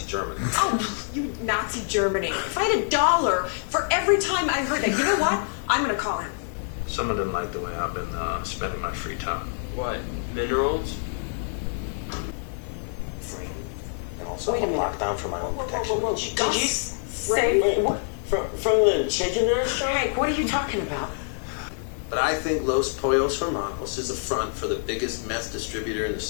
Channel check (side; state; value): right; silent; digital silence